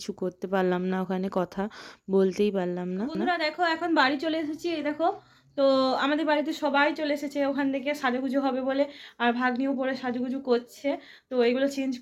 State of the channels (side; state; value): both; identical; correlation 1.00